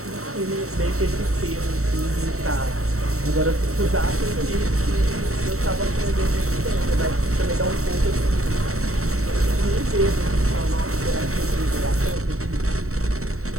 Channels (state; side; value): late; left; 0.64 ms